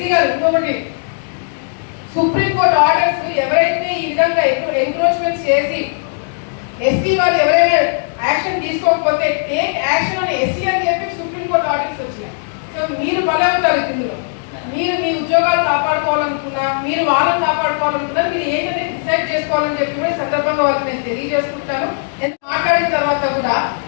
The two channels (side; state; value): right; silent; digital silence